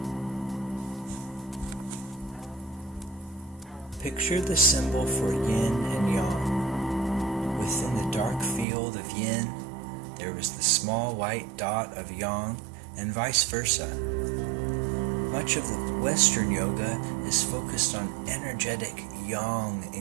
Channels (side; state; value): left; drops out; at 8.7 s